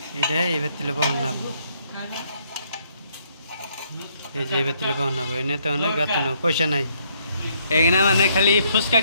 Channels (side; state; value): both; inverted; correlation -0.70